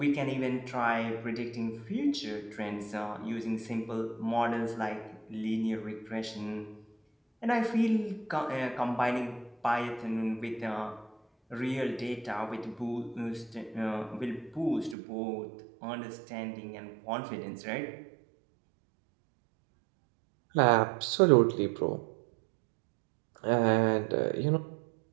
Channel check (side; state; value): left; drops out; at 15.0 s